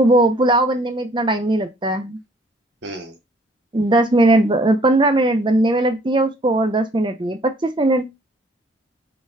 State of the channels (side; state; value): both; normal; correlation 0.59